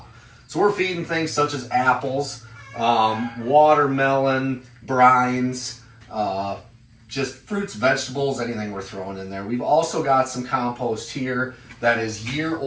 So we're feeding things such as apples, watermelon, brines, just fruits, vegetables, anything we're throwing in there. We've also got some compost here that is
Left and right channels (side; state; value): both; identical; correlation 1.00